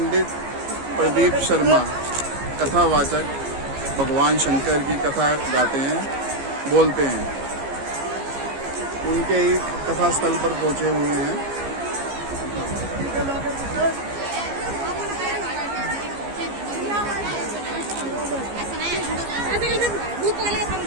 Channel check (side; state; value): left; late; 15 ms